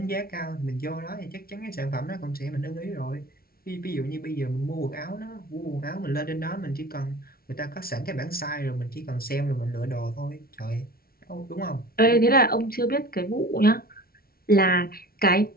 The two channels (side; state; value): right; late; 0.44 ms